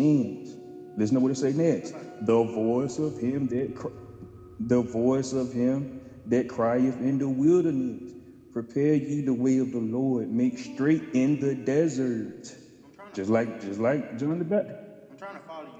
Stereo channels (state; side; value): identical; both; correlation 1.00